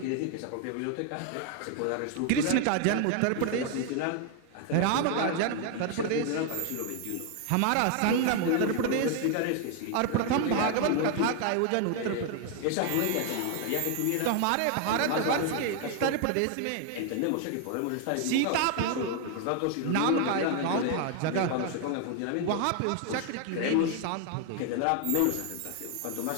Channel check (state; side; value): different; both; correlation 0.00